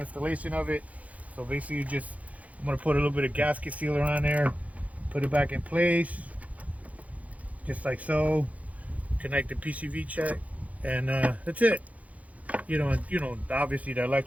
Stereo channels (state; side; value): late; left; 0.069 ms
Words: of it. So basically, I'm gonna put a little bit of gasket sealer on there, put it back in place, just like so. Connect the PCV check, and that's it. You know, obviously the